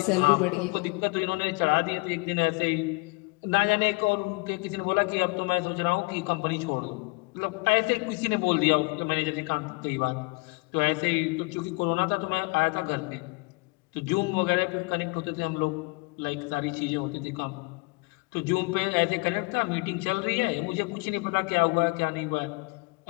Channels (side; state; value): right; quieter; 28.7 dB